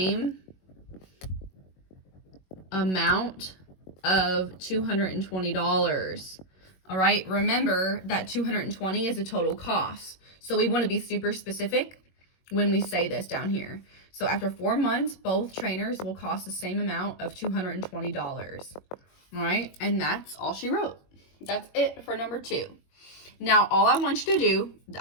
amount of $220. All right, remember that 220 is the total cost. So we want to be super specific when we say this down here. So after 4 months, both trainers will cost the same amount of $220. All right, and that's all she wrote. That's it for number 2. Now, all I want you to do,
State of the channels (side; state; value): right; late; 21 ms